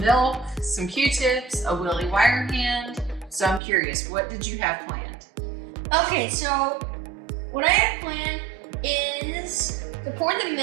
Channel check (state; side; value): drops out; left; at 3.6 s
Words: some Q-tips, a Willy wire hand. So I'm curious, what did you have planned? Okay, so what I have planned is to pour the